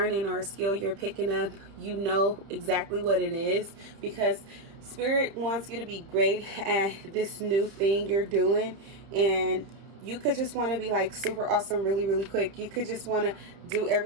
or a skill you're picking up, you know exactly what it is, because Spirit wants you to be great at this new thing you're doing. And you could just want to be like super awesome really, really quick. You could just want to do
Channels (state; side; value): late; left; 30 ms